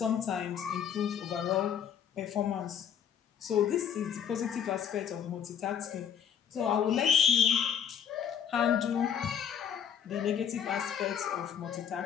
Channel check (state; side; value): quieter; right; 8.3 dB